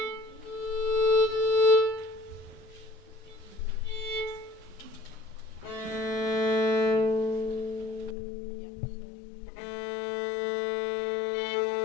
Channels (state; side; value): drops out; right; at 8.2 s